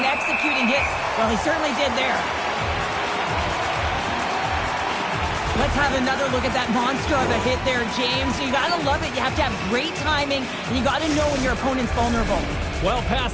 and executing hits. Well, he certainly did there. Let's have another look at that monster of a hit there, James. You gotta love it. You have to have great timing, and you gotta know when your opponent's vulnerable. Well past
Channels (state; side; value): identical; both; correlation 1.00